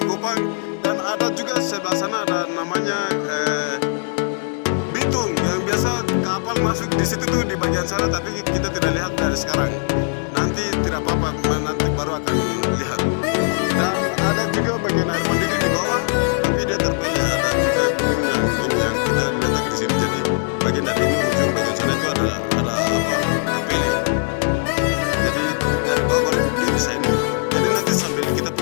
dan ada juga sebelah sana ada namanya Bitung, yang biasa kapal masuk di situ tuh di bagian sana, tapi kita tidak lihat dari sekarang. Nanti tidak apa-apa, nanti baru akan lihat. Dan ada juga bagian air mandiri di bawah, tapi dia terpilih ada juga gunung yang ini yang kita letak di sini. Jadi bagian dari ini ujung bagian sana itu ada apa terpilih. Jadi dari bawah baru dia bisa ini. Jadi nanti sambil kita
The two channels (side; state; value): right; silent; 65 dB below the other